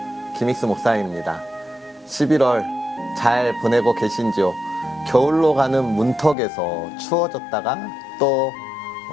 김익수 목사입니다. 11월 잘 보내고 계신지요? 겨울로 가는 문턱에서 추워졌다가 또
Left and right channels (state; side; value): drops out; right; at 6.4 s